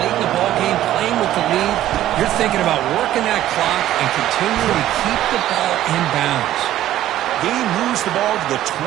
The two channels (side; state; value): left; quieter; 13.2 dB